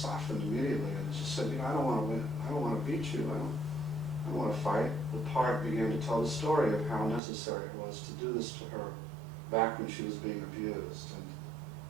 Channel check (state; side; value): drops out; left; at 7.2 s